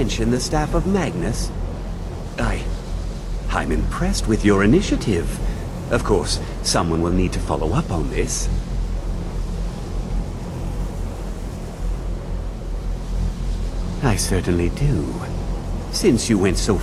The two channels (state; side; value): identical; both; correlation 1.00